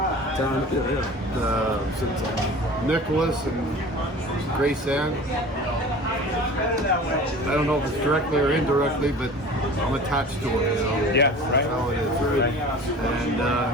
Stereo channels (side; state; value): both; normal; correlation 0.40